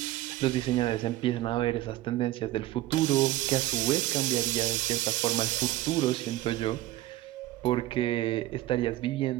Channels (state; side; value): quieter; left; 15.8 dB